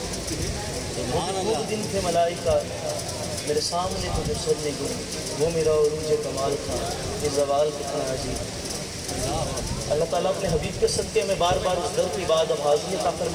वो दिन थे मलाइका मेरे सामने तो जो सर नहीं गुनी, वो मेरा उरूज कमाल था, ये जवाल कितना अजीब। अल्लाह ताला अपने हबीब के सदक़े में बार बार उस दर की बात अब हाज़िर अता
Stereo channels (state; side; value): identical; both; correlation 1.00